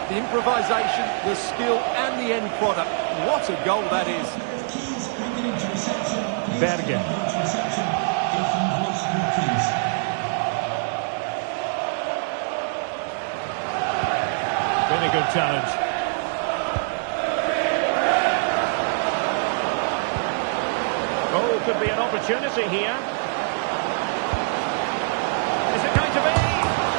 The improvisation, the skill, and the end product. What a goal that is. Berge. Really good challenge. Oh, could be an opportunity here. Is it going to be?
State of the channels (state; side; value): silent; left; 63 dB below the other